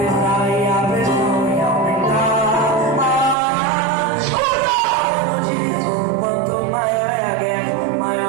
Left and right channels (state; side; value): drops out; left; at 3.4 s